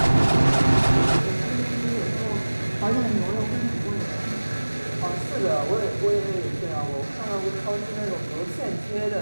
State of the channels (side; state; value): both; inverted; correlation -1.00